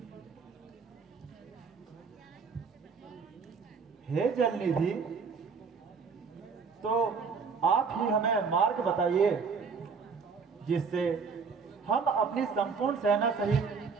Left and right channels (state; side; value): quieter; left; 5.4 dB